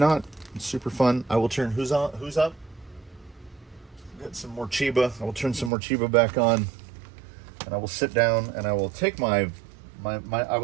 super fun. I will turn who's up? Get some more Chiba. I will turn some more Chiba back on, and I will sit down and I will take my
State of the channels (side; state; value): left; drops out; at 5.7 s